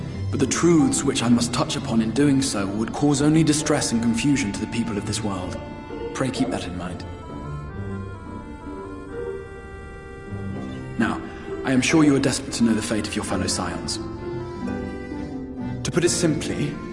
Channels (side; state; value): both; identical; correlation 1.00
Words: but the truths which I must touch upon in doing so would cause only distress and confusion to the people of this world. Pray keep that in mind. Now, I am sure you are desperate to know the fate of your fellow Scions. To put it simply,